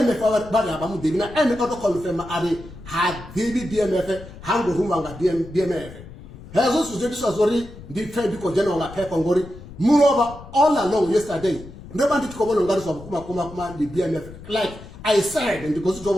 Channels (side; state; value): left; noise; rumble, 16 dB below the sound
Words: ba ya ba mu de na ene auto confirm are ha dibi BMF hango rumba nga BMF hezo sujetu sazori ndi trade ko jeno nga pepa ngori moreover all along yesterday ndeba ndi tikobolo ngari so kuma the BMF like I said and because to